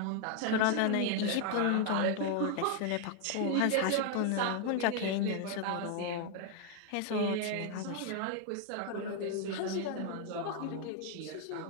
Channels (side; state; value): both; different; correlation 0.00